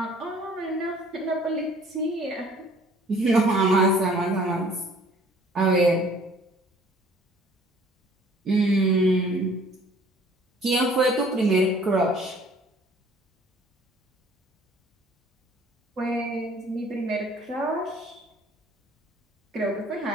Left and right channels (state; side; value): normal; both; correlation 0.55